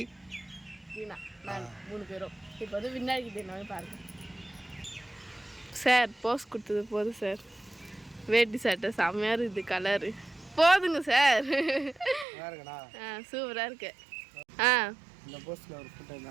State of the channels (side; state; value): left; drops out; at 12.2 s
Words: தீனா, நான் 3 பேரும். இப்போ வந்து விநாயகர் தீனாவே பாருங்கள் சார். போஸ் கொடுத்தது போதும் சார். வேட்டி சட்டை செம்மையாக இருக்குது, கலரு போதுங்க சார். சூப்பராக இருக்கு.